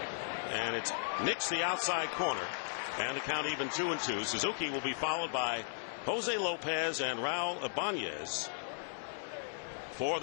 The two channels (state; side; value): silent; right; 54 dB below the other